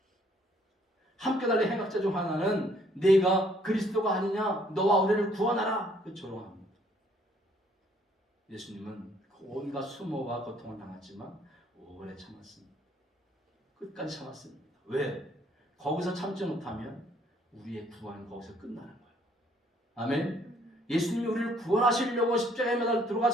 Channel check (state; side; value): normal; both; correlation 0.64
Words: 함께 달린 행악자 중 하나는 네가 그리스도가 아니냐 너와 우리를 구원하라 조롱합니다. 예수님은 온갖 수모와 고통을 당했지만 오래 참았습니다. 끝까지 참았습니다. 왜? 거기서 참지 못하면 우리의 구원은 거기서 끝나는 거예요. 아멘. 예수님이 우리를 구원하시려고 십자가에 매달려